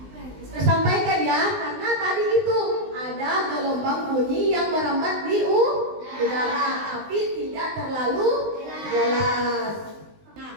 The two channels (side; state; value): left; late; 19 ms